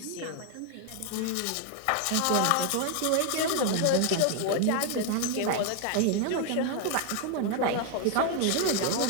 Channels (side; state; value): both; different; correlation 0.00